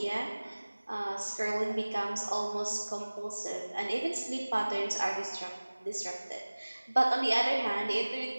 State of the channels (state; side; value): inverted; both; correlation -1.00